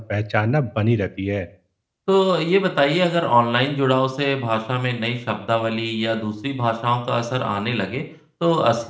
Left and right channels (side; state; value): both; identical; correlation 1.00